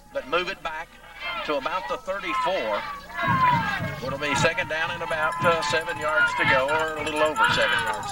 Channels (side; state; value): both; identical; correlation 1.00